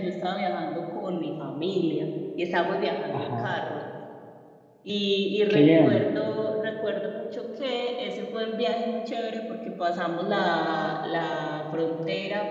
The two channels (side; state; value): both; identical; correlation 1.00